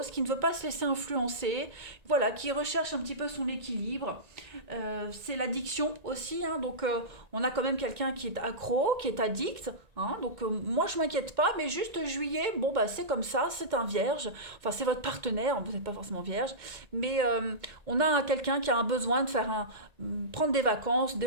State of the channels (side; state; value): left; late; 1.8 ms